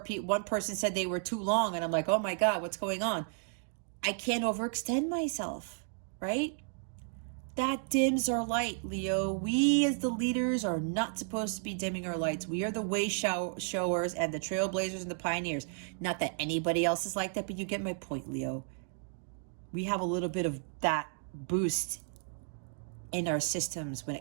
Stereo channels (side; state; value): left; silent; 56 dB below the other